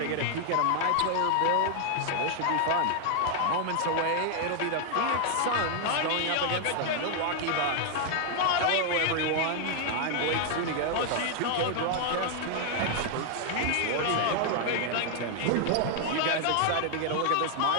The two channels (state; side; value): different; both; correlation 0.00